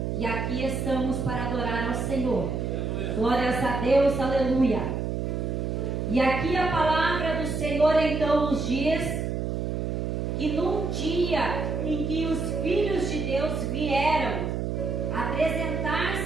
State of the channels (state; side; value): noise; right; hum, 1 dB below the sound